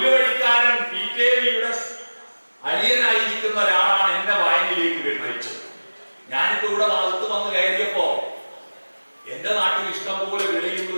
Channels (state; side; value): inverted; both; correlation -1.00